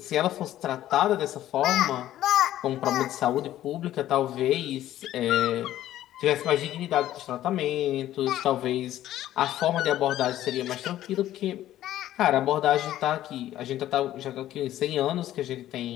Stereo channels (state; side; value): quieter; right; 13.2 dB